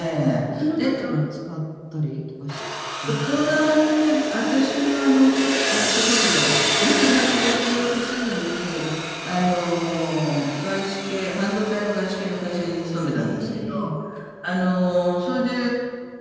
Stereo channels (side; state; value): both; identical; correlation 1.00